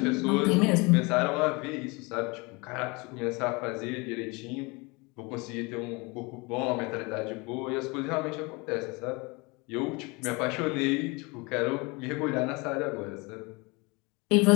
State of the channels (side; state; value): right; quieter; 26.9 dB